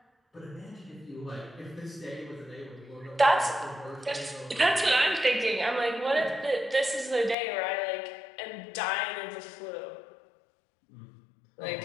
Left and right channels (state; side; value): drops out; right; at 7.4 s